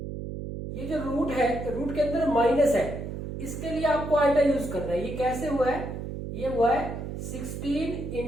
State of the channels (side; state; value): right; noise; hum, 7 dB below the sound